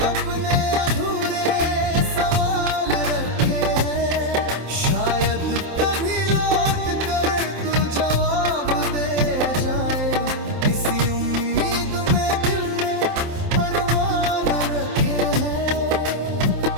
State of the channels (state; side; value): late; left; 27 ms